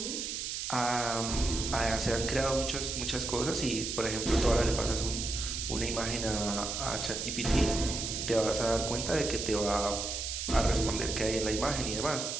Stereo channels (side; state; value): right; noise; hiss, 4 dB below the sound